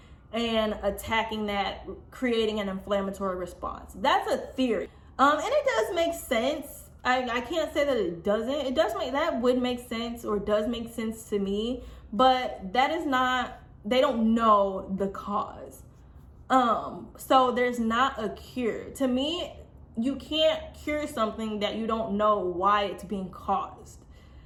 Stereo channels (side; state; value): both; identical; correlation 1.00